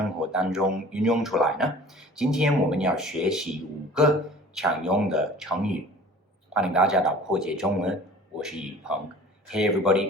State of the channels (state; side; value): normal; both; correlation 0.46